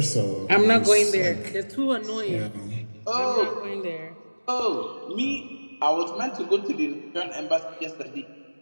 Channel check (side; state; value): both; inverted; correlation -1.00